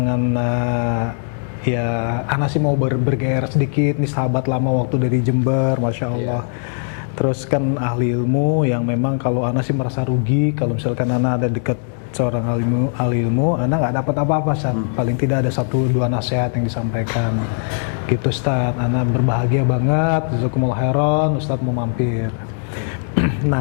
ya Ana sih mau bergairah sedikit nih, sahabat lama waktu dari Jember, Masya Allah. Terus kan ahli ilmu yang memang kalau Ana sih merasa rugi kalau misalkan Ana ada dekat seorang ahli ilmu, Ana nggak dapat apa-apa, paling tidak ada 1-2 nasihat yang disampaikan gitu Ustaz. Ana berbahagia banget, jazakumullah khairan, Ustaz mau mampir.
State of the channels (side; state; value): right; silent; digital silence